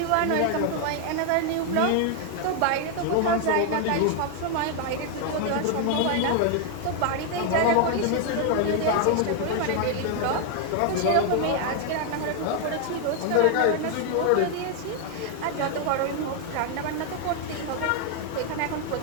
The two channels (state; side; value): different; both; correlation 0.00